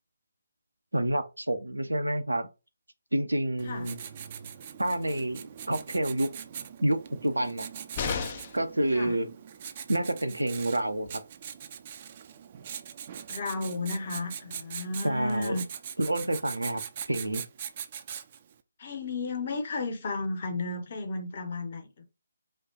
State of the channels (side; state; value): both; inverted; correlation -0.89